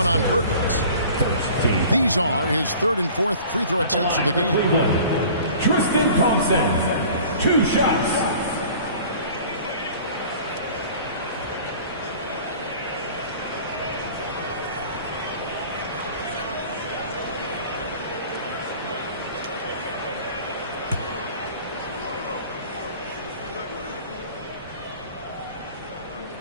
on Perkins. These are his 3rd and 4th free throw attempts of the game. Tristan Thompson, 2 shots.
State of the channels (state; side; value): inverted; both; correlation -0.46